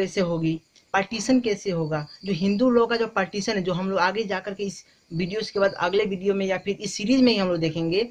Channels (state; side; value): identical; both; correlation 1.00